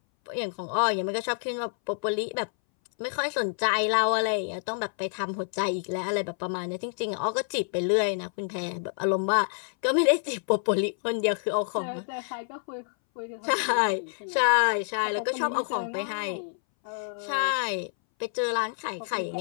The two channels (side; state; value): right; silent; 59 dB below the other